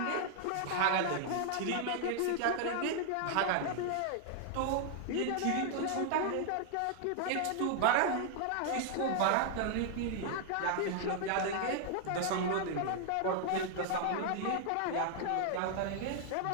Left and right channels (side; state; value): both; different; correlation 0.00